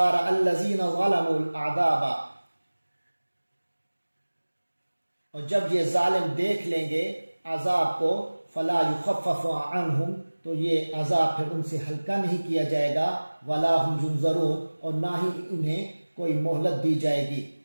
رَأَى الَّذِينَ ظَلَمُوا الْأَعْذَابَ، اور جب یہ ظالم دیکھ لیں گے عذاب کو، فَلَا يُخَفَّفُ عَنْهُمْ، تو یہ عذاب پھر ان سے ہلکا نہیں کیا جائے گا، وَلَا هُمْ يُنظَرُونَ، اور نہ ہی انہیں کوئی مہلت دی جائے گی۔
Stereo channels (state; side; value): inverted; both; correlation -1.00